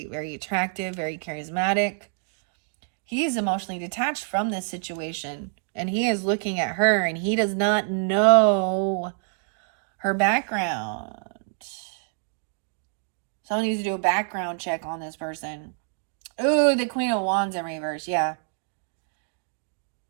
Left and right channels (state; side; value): silent; left; 58 dB below the other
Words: very attractive, very charismatic. He is emotionally detached from this situation. And he is looking at her, and he does not know her background. Someone needs to do a background check on this person. Ooh, the Queen of Wands in reverse, yeah.